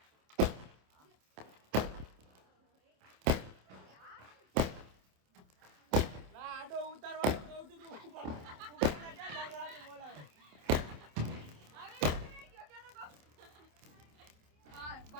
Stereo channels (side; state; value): left; late; 27 ms